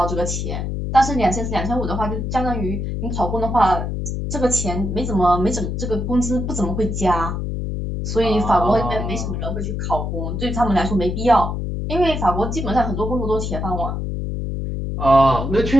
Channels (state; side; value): noise; left; hum, 3 dB below the sound